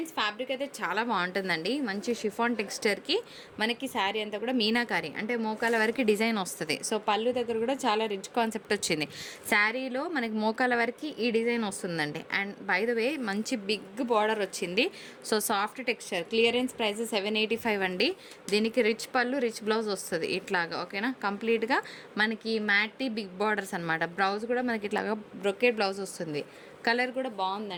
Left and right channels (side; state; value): both; identical; correlation 1.00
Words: ఫ్యాబ్రిక్ అయితే చాలా బాగుంటుందండి. మంచి షిఫాన్ టెక్స్చర్కి మనకి శారీ అంతా కూడా మీనాకారి అంటే మోకాల వరకు డిజైన్ వస్తుంది. సో పళ్ళు దగ్గర కూడా చాలా రిచ్ కాన్సెప్ట్ వచ్చింది. శారీలో మనకి మోకాల వరకు ఈ డిజైన్ వస్తుందండి. అండ్ బై ద వే మంచి బిగ్ బార్డర్ వచ్చింది. So soft texture. Clearance price 785 అండి. దీనికి రిచ్ పళ్ళు, రిచ్ బ్లౌజ్ వస్తుంది ఇట్లాగా. ఓకేనా? కంప్లీట్గా మనకి మ్యాటీ బిగ్ బార్డర్స్ అనమాట. బ్లౌజ్ కూడా మనకి ఇట్లాగా బ్రొకేట్ బ్లౌజ్ వస్తుంది. కలర్ కూడా